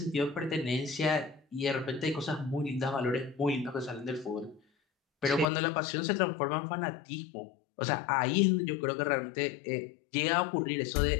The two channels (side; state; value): right; drops out; at 5.5 s